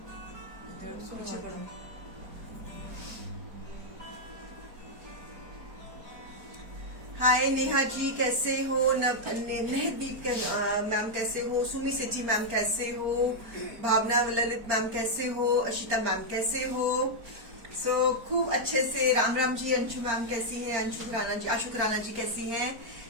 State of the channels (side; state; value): left; late; 4.4 ms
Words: हाय नेहा जी कैसे हो, नहदीप मैम कैसे हो, सुमी सेठी मैम कैसे हो, भावना ललित मैम कैसे हो, अशिता मैम कैसे हो। सो खूब अच्छे से राम राम जी। अंशु मैम कैसी है, अंशु खुराना जी, आशु खुराना जी कैसी हैं,